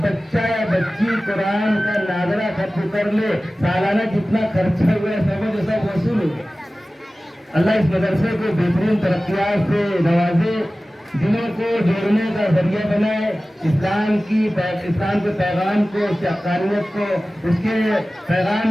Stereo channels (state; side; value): normal; both; correlation 0.96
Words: بچہ یا بچی قرآن کا ناظرہ ختم کر لے، سالانہ جتنا خرچہ ہوا ہے سمجھ سب وصول ہو گیا۔ اللہ اس مدرسے کو بہترین ترقیات سے نوازے، دلوں کو جوڑنے کا ذریعہ بنائے، اسلام کے پیغام کو، اس کی حقانیت کو، اس کے